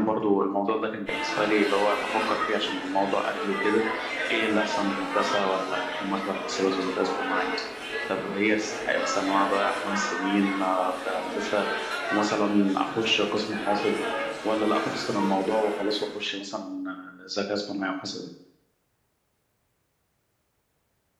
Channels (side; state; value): both; identical; correlation 1.00